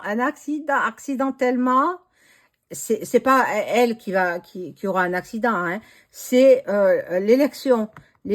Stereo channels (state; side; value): identical; both; correlation 1.00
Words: accidentellement. C'est pas elle qui aura un accident, hein. C'est l'élection.